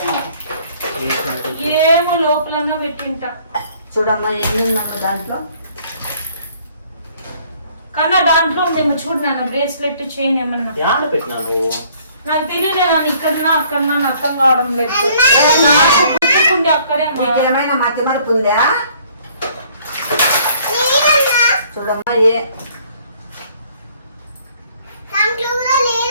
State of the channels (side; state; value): both; inverted; correlation -0.60